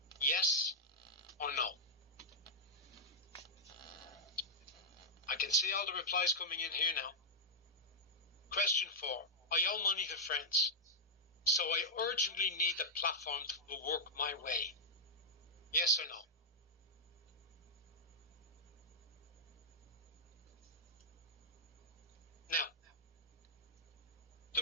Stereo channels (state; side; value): normal; both; correlation -0.09